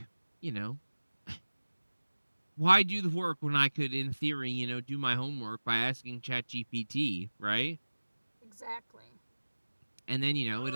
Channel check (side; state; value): both; inverted; correlation -1.00